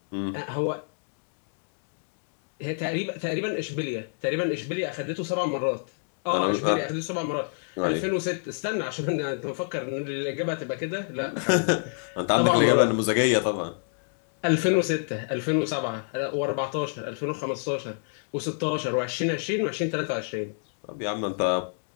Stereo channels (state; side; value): silent; right; digital silence